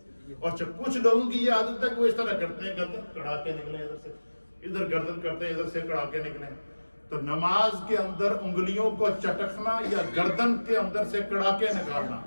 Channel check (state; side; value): inverted; both; correlation -1.00